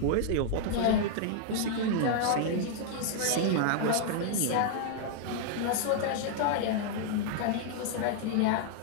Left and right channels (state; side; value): different; both; correlation -0.01